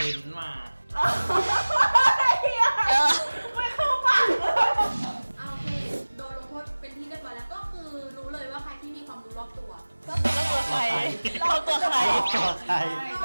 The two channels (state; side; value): inverted; both; correlation -1.00